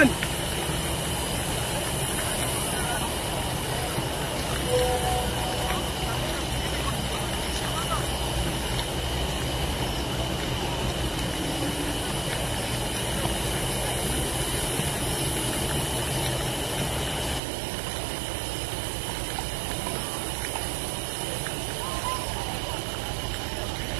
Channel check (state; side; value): drops out; left; at 17.4 s